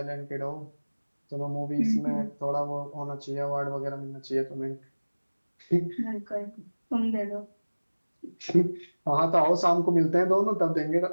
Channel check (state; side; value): inverted; both; correlation -1.00